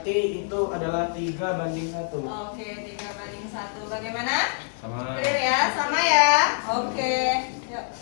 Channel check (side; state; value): right; silent; 61 dB below the other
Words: itu adalah 3:1. Oke, 3:1. Bagaimana? Sama. Clear ya? Sama ya? Oke. Yuk,